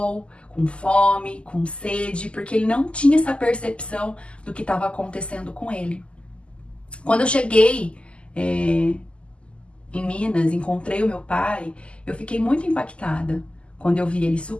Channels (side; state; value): right; late; 0.054 ms